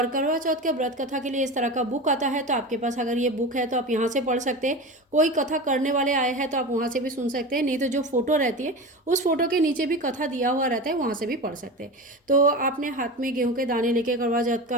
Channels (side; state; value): both; normal; correlation 0.28